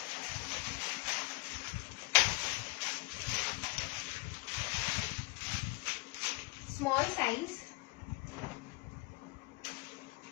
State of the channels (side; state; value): right; quieter; 25.4 dB